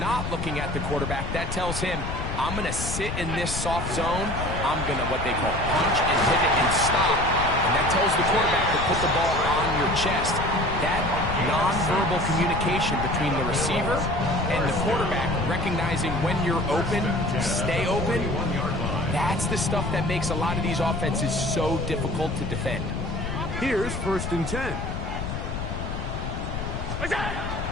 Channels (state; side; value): noise; left; rumble, 5 dB below the sound